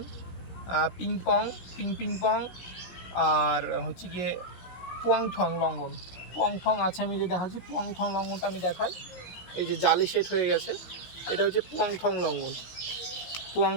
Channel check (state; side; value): late; right; 16 ms